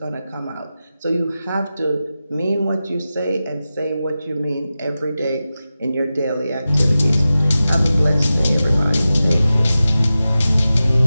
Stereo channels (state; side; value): inverted; both; correlation -0.94